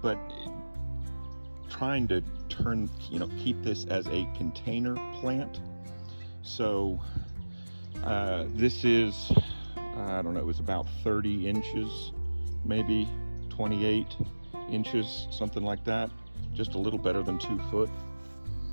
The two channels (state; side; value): inverted; both; correlation -1.00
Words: But trying to keep this as a container plant. So this is, I don't know, it was about 30 inches, maybe 28 inches, something like that. Just a little better than 2 foot,